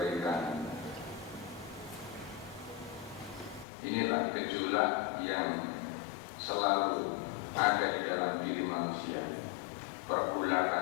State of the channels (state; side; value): drops out; right; at 3.7 s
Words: Inilah gejolak yang selalu ada di dalam diri manusia.